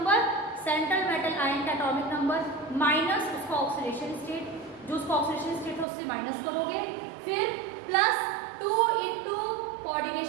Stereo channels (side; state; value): left; drops out; at 5.9 s